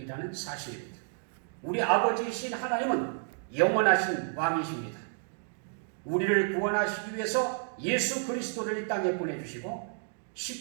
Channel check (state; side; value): silent; left; digital silence